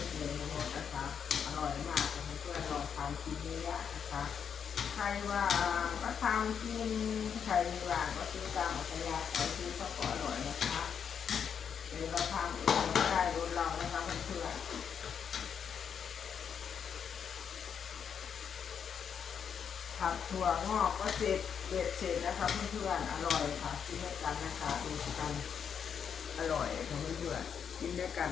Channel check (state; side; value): quieter; right; 7.4 dB